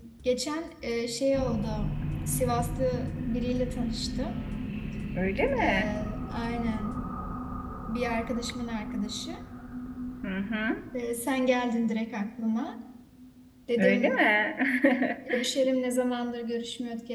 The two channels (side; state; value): both; identical; correlation 1.00